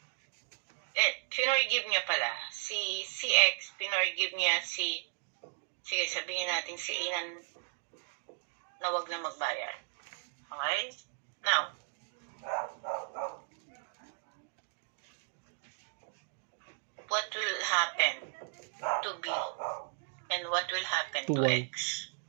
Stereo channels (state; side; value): silent; left; 54 dB below the other